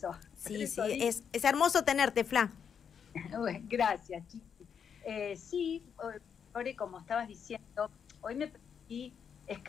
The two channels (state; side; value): quieter; right; 7.3 dB